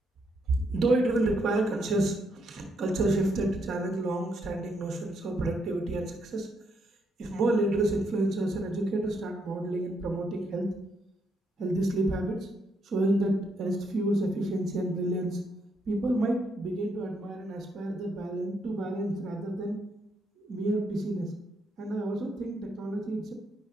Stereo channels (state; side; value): normal; both; correlation 0.76